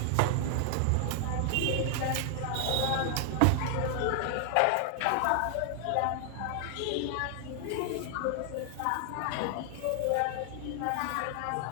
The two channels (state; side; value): different; both; correlation 0.00